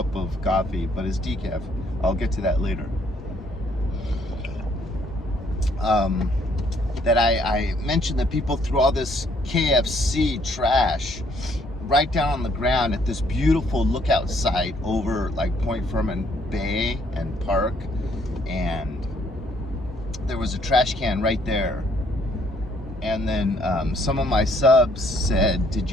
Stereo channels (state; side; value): normal; both; correlation 0.66